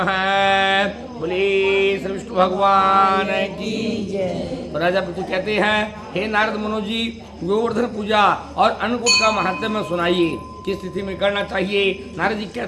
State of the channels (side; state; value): both; identical; correlation 1.00